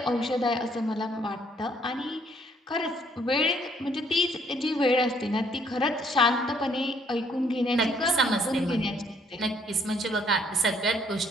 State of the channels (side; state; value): both; normal; correlation 0.66